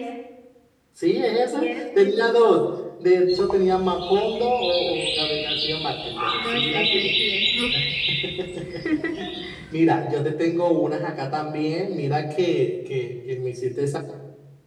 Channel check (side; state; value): both; identical; correlation 1.00